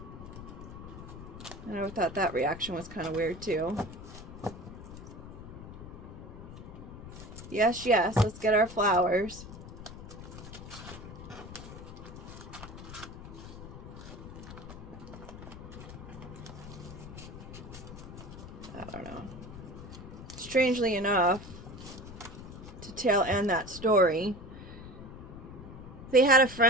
And I thought that reaction was kind of weird, too. Yes, yes, let's get our flowers. I don't know. Strangely enough, to tail end that story, they had a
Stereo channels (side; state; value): left; noise; rumble, 12 dB below the sound